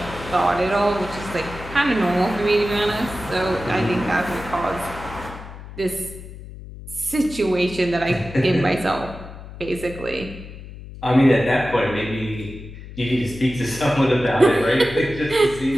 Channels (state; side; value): noise; left; hum, 14 dB below the sound